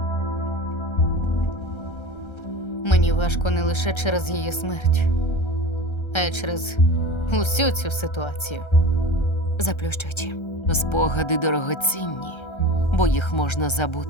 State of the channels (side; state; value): right; late; 1.3 ms